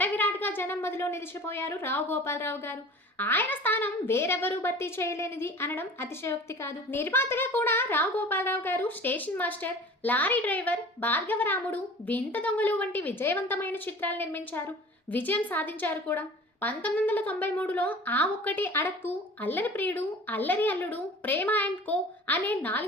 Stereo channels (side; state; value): both; normal; correlation 0.42